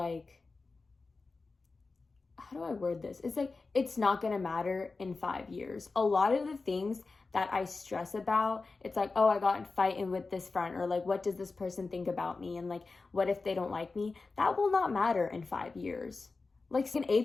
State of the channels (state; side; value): quieter; right; 3.9 dB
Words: how do I word this? It's like, it's not gonna matter in 5 years. A lot of the things that I stress about, it's like, oh, I got in fighting with this friend, or like, what does this person think about me? And like, what if they don't like me? That will not matter in 5 years. Like in